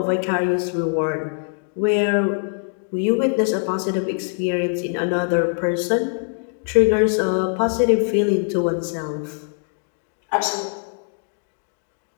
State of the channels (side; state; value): right; silent; 56 dB below the other